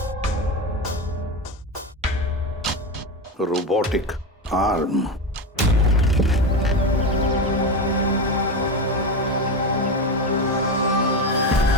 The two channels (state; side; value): normal; both; correlation 0.18